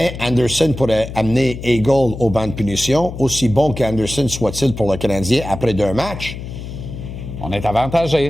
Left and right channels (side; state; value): left; noise; hum, 10 dB below the sound